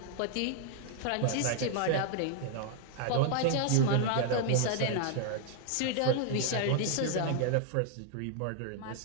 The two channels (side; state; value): both; different; correlation 0.00